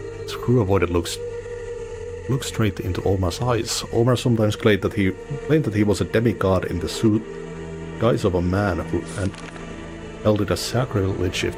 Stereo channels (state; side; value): identical; both; correlation 1.00